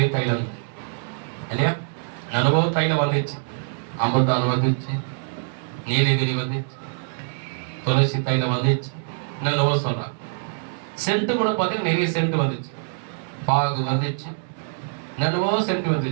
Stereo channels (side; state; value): left; silent; digital silence